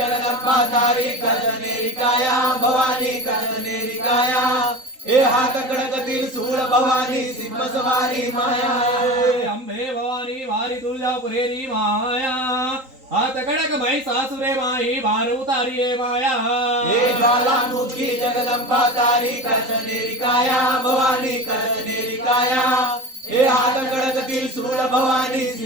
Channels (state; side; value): late; left; 3.8 ms